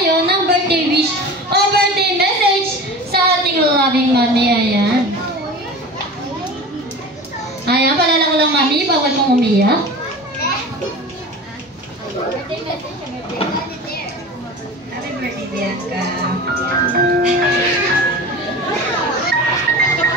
ng birthday wish o birthday message sa ating loving mami. Ayan. Ayan, palala ko lang mami, bawal mong umiyak. Birthday message, Happy birthday, Bianca.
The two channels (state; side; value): normal; both; correlation 0.34